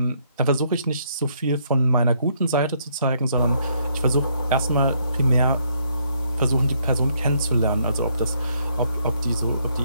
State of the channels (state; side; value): inverted; both; correlation -0.71